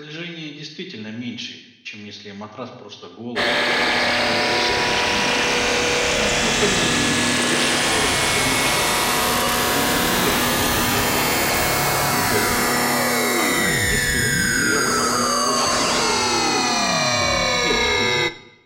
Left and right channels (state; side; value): identical; both; correlation 1.00